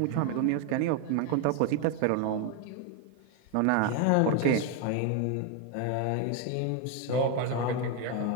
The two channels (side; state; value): both; different; correlation 0.01